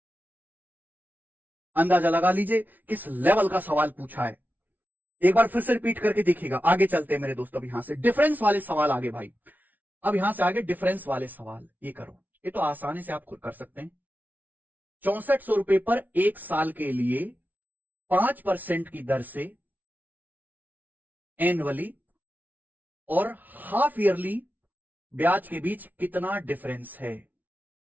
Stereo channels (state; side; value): late; left; 0.080 ms